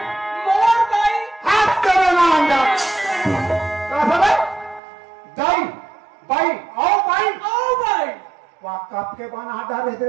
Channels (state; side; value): drops out; left; at 4.8 s